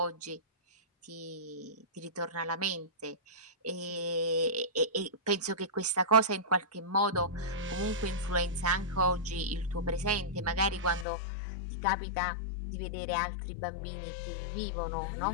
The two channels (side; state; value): right; drops out; at 11.1 s